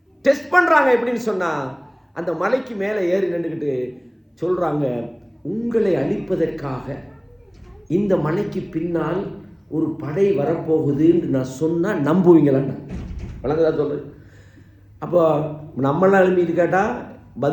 டெஸ்ட் பண்றாங்க. எப்படின்னு சொன்னா, அந்த மலைக்கு மேலே ஏறி நின்றுக்கிட்டு சொல்றாங்க, உங்களை அழிப்பதற்காக இந்த மலைக்கு பின்னால் ஒரு படை வரப்போகுதுன்னு நான் சொன்னா நம்புவீங்களான்னு வழங்குதா சொல்றேன். அப்போ நம்மளாம் எழுப்பிட்டு கேட்டால்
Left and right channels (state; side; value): identical; both; correlation 1.00